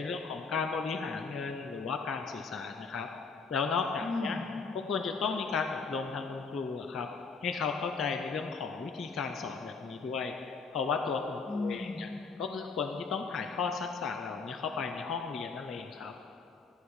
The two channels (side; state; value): right; quieter; 4.7 dB